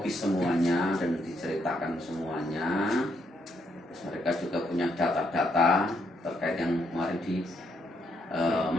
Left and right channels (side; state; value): both; normal; correlation 0.75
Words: semuanya dan diceritakan semuanya. Terus mereka juga punya data-data terkait yang kemarin